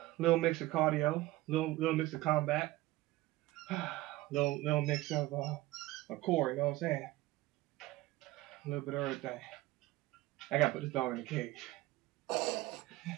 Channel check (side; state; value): left; quieter; 17.9 dB